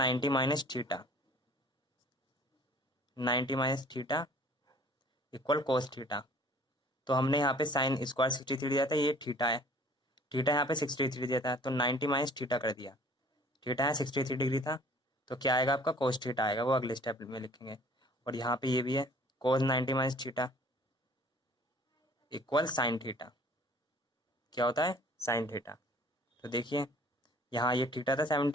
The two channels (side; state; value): both; normal; correlation 0.52